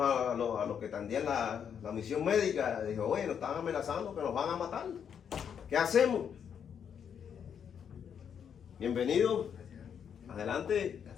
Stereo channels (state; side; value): quieter; right; 7.9 dB